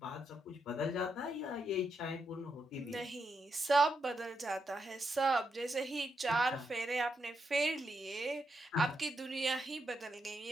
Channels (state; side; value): normal; both; correlation 0.82